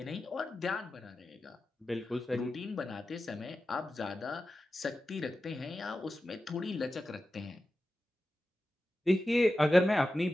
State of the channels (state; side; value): normal; both; correlation 0.93